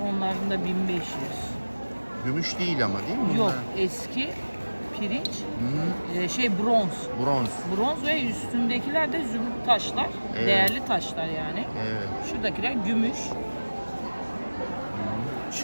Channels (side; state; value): both; inverted; correlation -1.00